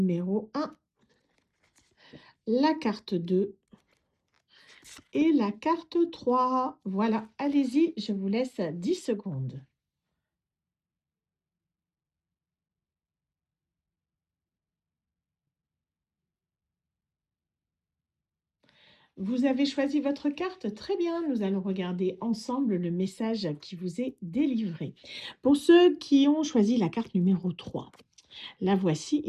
1, la carte 2 et la carte 3. Voilà, allez-y, je vous laisse 10 secondes. Vous avez choisi votre carte? Très bien, nous allons regarder ensemble le message qui vous est délivré. Pour ceux qui ont choisi la carte numéro 3, la voici,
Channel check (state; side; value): identical; both; correlation 1.00